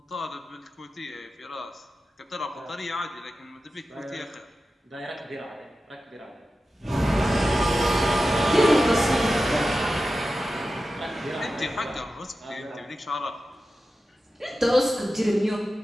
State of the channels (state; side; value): normal; both; correlation 0.93